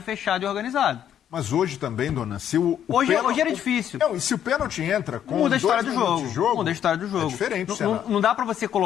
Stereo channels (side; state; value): right; quieter; 9.9 dB